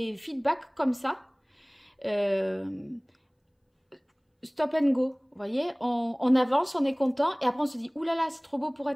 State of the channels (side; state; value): both; identical; correlation 1.00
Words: feedbacks comme ça. Stop and go, vous voyez, on avance, on est content, et après on se dit, oulala, c'est trop beau pour